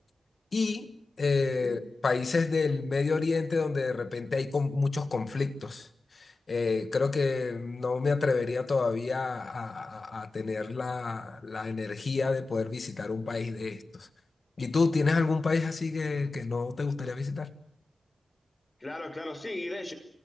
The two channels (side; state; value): right; quieter; 3.6 dB